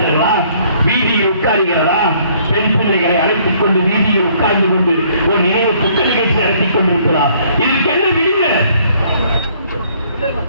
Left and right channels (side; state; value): both; inverted; correlation -0.62